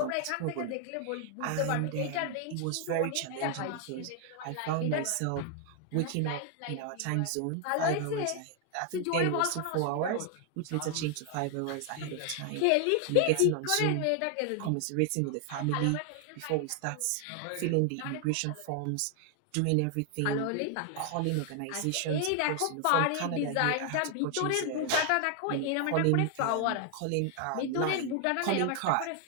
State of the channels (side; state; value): both; different; correlation 0.00